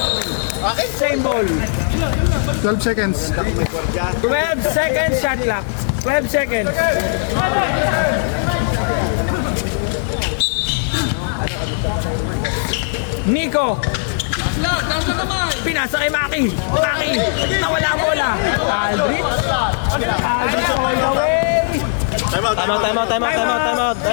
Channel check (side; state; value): right; silent; 55 dB below the other